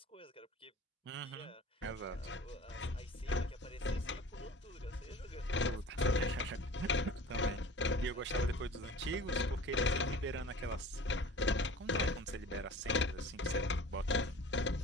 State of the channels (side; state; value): both; normal; correlation 0.41